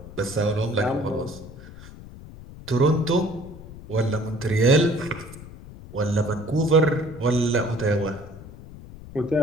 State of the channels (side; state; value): left; noise; rumble, 16 dB below the sound